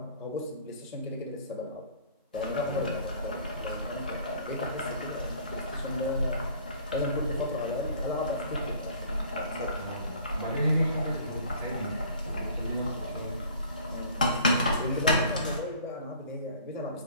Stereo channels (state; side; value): inverted; both; correlation -0.51